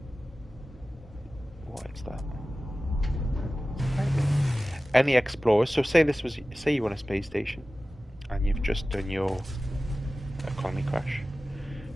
What is that? Any explorers. So say you're on a space station, and you've just done your economy crash.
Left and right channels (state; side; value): normal; both; correlation 0.96